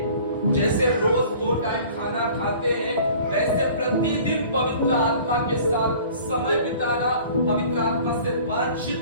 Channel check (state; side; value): inverted; both; correlation -0.48